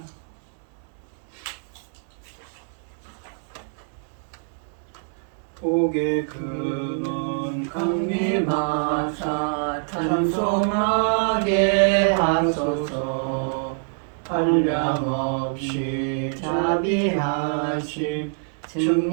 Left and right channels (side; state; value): left; silent; digital silence